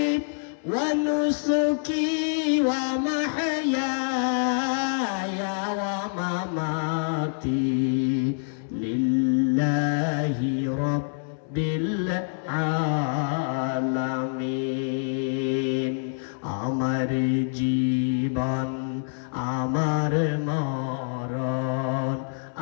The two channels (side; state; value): right; silent; 59 dB below the other